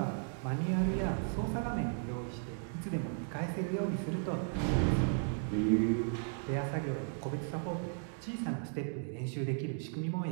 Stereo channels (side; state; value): left; silent; 54 dB below the other